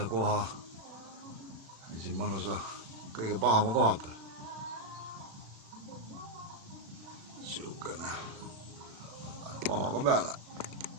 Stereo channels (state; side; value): late; left; 36 ms